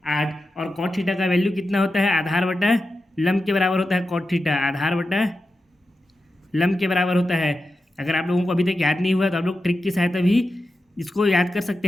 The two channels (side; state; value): both; normal; correlation 0.91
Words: और कॉट थीटा का वैल्यू कितना होता है, आधार बटा लंब के बराबर होता है। कॉट थीटा आधार बटा लंब के बराबर होता है। अगर आप लोगों को अभी तक याद नहीं हुआ तो आप लोग ट्रिक की सहायता भी इसको याद कर सकते